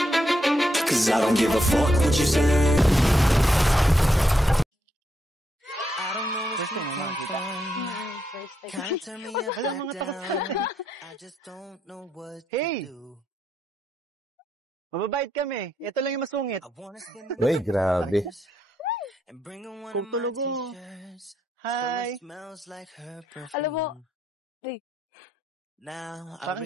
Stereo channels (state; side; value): normal; both; correlation 0.79